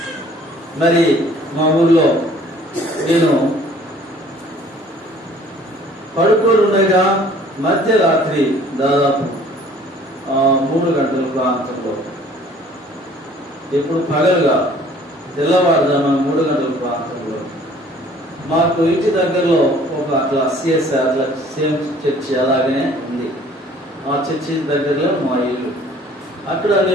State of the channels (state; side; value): normal; both; correlation 0.54